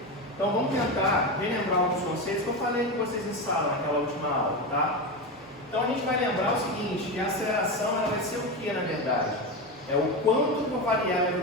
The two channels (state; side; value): normal; both; correlation 0.18